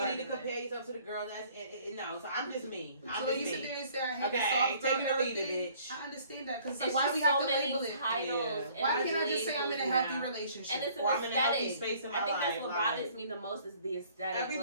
you need to compare yourself to the girl that's no. So I'm just me. I'm So just you sit me. there and say I hate the Okay, soft take it or leave it, everything. bitch. I understand that because It's why just we have so to many label it? titles. Yeah. and Why can't I just say I'm in a healthy labels now. relationship? And it's an Or I'm in a healthy aesthetic. space in my I think life. that's what like, bothers me the most is the aesthetic.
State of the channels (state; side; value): inverted; both; correlation -0.57